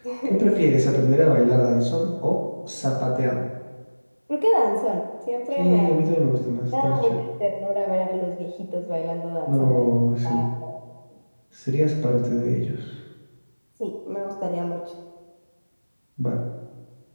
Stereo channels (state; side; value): inverted; both; correlation -1.00